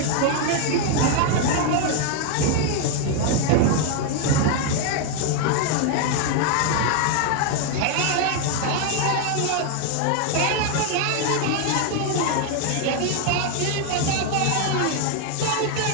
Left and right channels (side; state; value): both; different; correlation 0.00